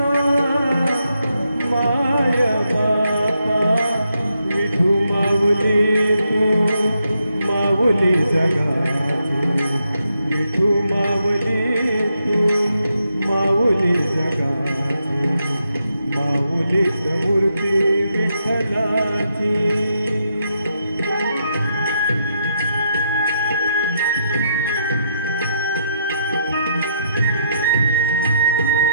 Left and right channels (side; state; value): both; inverted; correlation -0.79